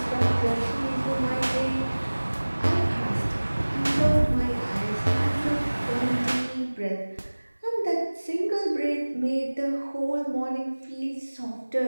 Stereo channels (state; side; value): inverted; both; correlation -1.00